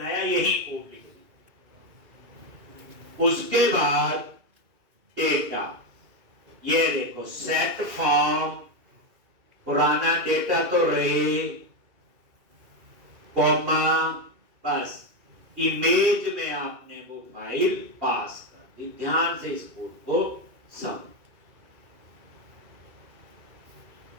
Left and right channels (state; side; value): late; left; 2.4 ms